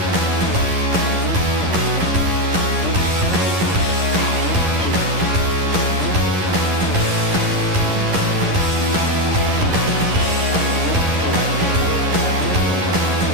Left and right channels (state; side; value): late; left; 11 ms